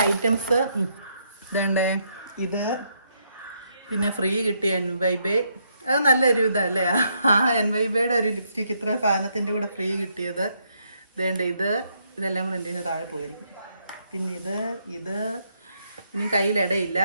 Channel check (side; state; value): both; inverted; correlation -0.75